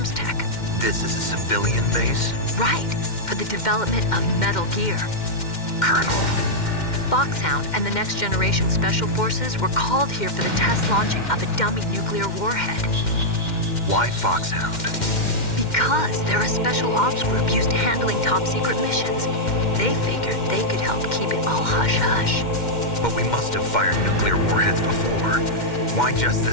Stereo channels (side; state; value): right; late; 2.1 ms